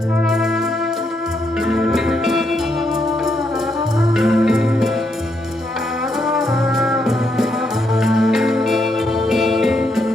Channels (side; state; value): both; normal; correlation 0.77